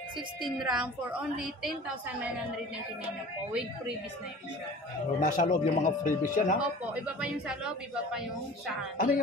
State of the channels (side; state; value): both; normal; correlation 0.41